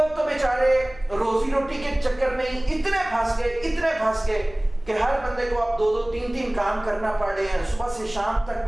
تو بیچارے روزی روٹی کے چکر میں اتنے پھنس گئے کہ ہر بندے کو اب 2-3 کام کرنا پڑ رہے ہیں, صبح سے شام تک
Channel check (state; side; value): noise; left; hum, 20 dB below the sound